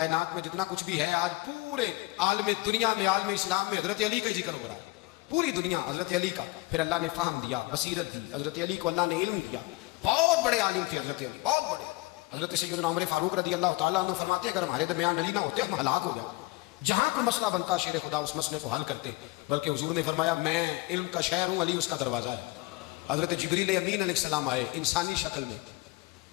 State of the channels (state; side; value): quieter; right; 22.2 dB